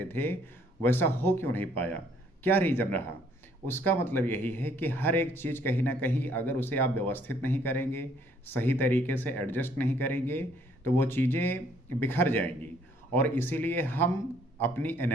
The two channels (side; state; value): both; normal; correlation 0.64